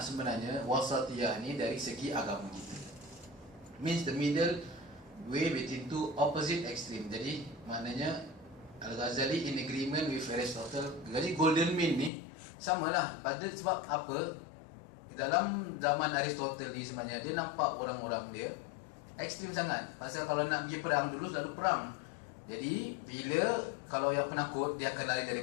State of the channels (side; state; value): right; drops out; at 12.1 s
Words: sebenarnya wasatiyah ni dari segi agama kita, means the middle way between two opposite extreme. Jadi maknanya Al-Ghazali in agreement with Aristotle. Jadi golden mean ni samalah. Pada sebab apa? Dalam zaman Aristotle ni sebenarnya dia nampak orang-orang dia ekstrim sangat. Pasal kalau nak pergi perang dulu selalu perang. Jadi bila kalau yang penakut dia akan lari dari